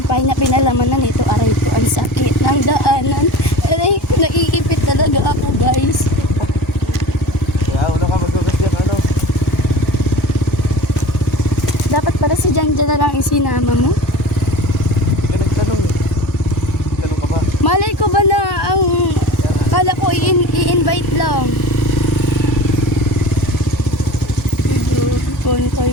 na pinalaman na nito. Aray ko, ang sakit ng daanan. Aray ko, naiipit talaga ako, guys. Kaya una ka magkakas dyan, ano? Dapat para si Jan na lang isinama mo. Hindi ka nagtanong eh. Tanong ka ba? Malay ko ba na ang kala ko i-invite lang. Medyo kontoy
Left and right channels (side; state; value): both; normal; correlation 0.37